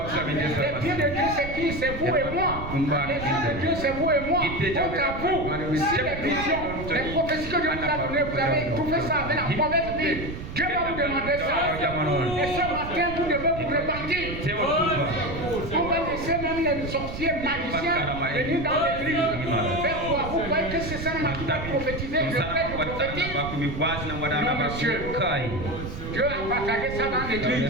Les pieds de Dieu, c'est qui? C'est vous et moi. Les pieds de Dieu, c'est vous et moi. Donc à vous. Si les visions, les prophéties que Dieu vous a données, vous avez trouvé ça avec la mauvaise vie. Dieu va vous demander ça. Et ce matin, vous devez vous repentir. On va laisser même les sorciers magiciens venir dans l'église. Faire quoi? Vous croyez que c'est ça qui va prophétiser? Je prête le prophétique. Non, monsieur. Dieu a partagé ça dans l'église.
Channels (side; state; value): right; noise; rumble, 8 dB below the sound